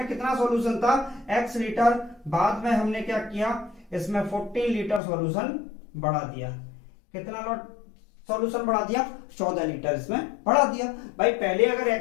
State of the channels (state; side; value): drops out; right; at 5.0 s